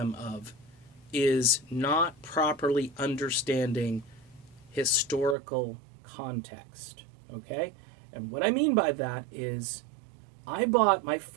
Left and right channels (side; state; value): left; drops out; at 5.4 s